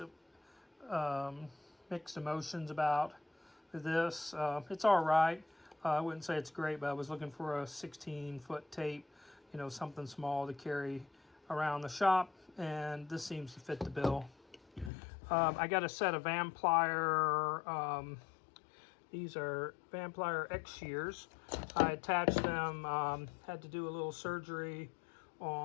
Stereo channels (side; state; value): right; drops out; at 14.9 s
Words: emotions about this. It's all right. I wouldn't say it's great, but I was looking for a 16-foot tape, you know, something small to carry around the shop, and this seems to fit the bill. I got a set of Vanplier, these are Vanplier X shears. I attached them, had to do a little surgery